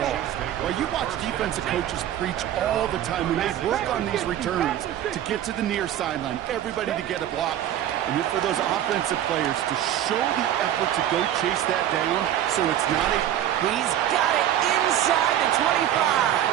ball. While you watch defensive coaches preach all the time when they work on these returns to get to the near sideline, everybody to get a block, and then for those offensive players to show the effort to go chase that down so it's not a... He's got it inside the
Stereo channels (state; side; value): quieter; left; 11.5 dB